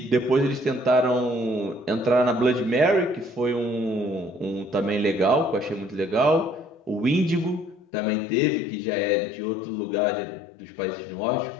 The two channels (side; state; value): right; drops out; at 7.8 s